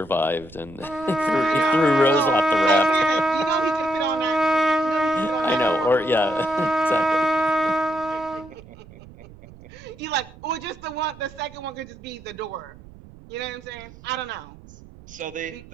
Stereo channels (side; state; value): right; noise; rumble, 20 dB below the sound